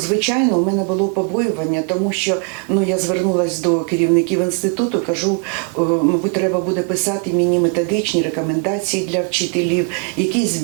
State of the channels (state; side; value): quieter; left; 37.8 dB